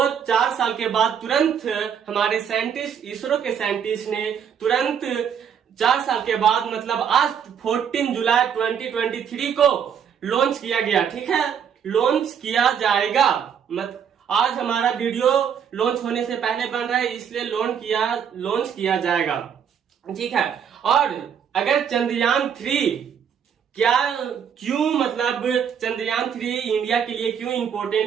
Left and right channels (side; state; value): left; quieter; 7.9 dB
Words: 4 साल के बाद तुरंत हमारे साइंटिस्ट, इसरो के साइंटिस्ट ने तुरंत 4 साल के बाद मतलब आज 14 जुलाई 2023 को लॉन्च किया गया, ठीक है, लॉन्च किया जाएगा। आज हमारा वीडियो लॉन्च होने से पहले बन रहा है, इसलिए लॉन्च किया जाएगा, ठीक है। और अगर चंद्रयान 3 क्यों मतलब चंद्रयान 3 इंडिया के लिए क्यों